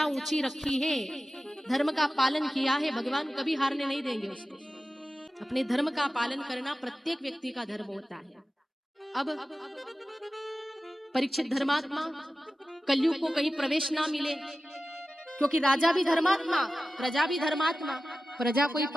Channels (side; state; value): both; normal; correlation 0.94